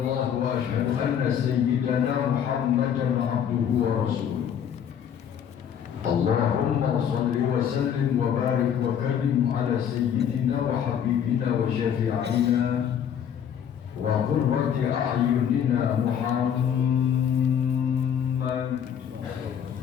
wa ashhadu anna sayyidana Muhammadan abduhu wa rasuluh. Allahumma salli wa sallim wa barik wa karim ala sayyidina wa habibina wa syafi'ina wa qurrati a'yunina Muhammad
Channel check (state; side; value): quieter; right; 8.7 dB